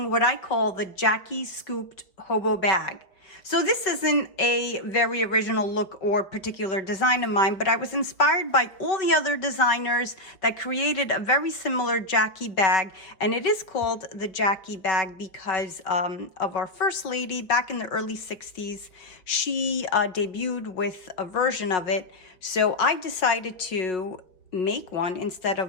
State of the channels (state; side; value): late; right; 4.9 ms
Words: what I call the Jackie Scooped Hobo Bag. So this isn't a very original look or particular design of mine, but I was inspired by all the other designers that created a very similar Jackie bag. And it is called the Jackie bag because of our first lady back in the early 60s. She debuted with a version of it. So I decided to make one instead